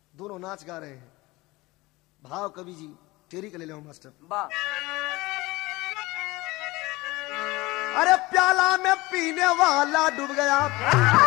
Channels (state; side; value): quieter; right; 21.2 dB